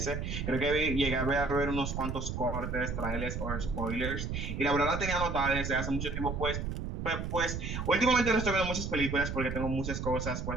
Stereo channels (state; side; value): noise; right; rumble, 4 dB below the sound